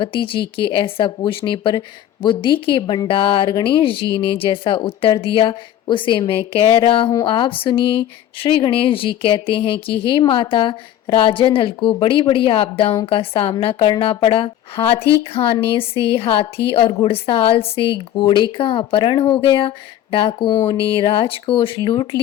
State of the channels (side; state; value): right; quieter; 11.6 dB